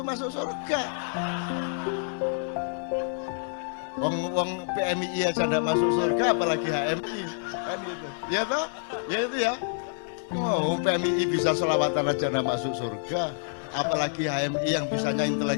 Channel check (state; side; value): silent; right; digital silence